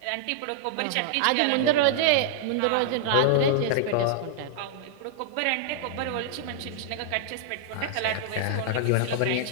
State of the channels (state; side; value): different; both; correlation -0.01